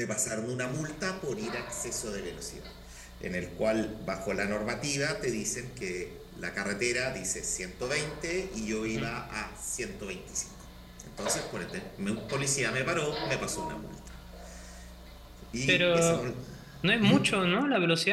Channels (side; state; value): both; identical; correlation 1.00